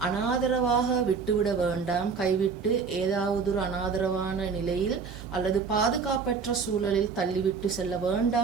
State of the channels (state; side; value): quieter; left; 5.4 dB